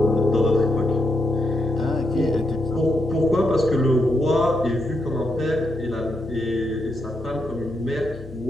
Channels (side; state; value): both; normal; correlation 0.81